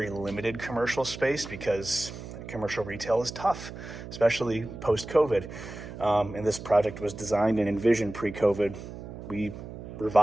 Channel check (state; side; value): noise; right; hum, 11 dB below the sound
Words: limited commercial space because commercial retail is tough, especially post-COVID. And this project was designed and envisioned pre-COVID. We